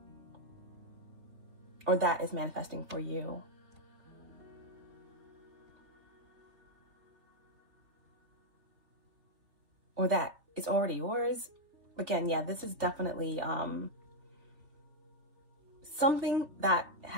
Or that is manifesting for you. Or that is already yours. Again, yeah, this is definitely something that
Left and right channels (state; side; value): late; left; 3.3 ms